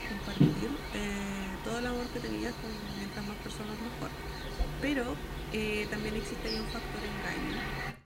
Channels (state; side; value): identical; both; correlation 1.00